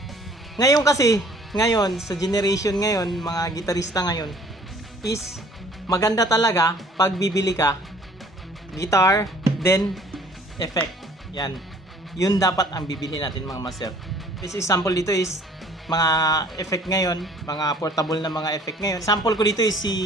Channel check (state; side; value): normal; both; correlation 0.55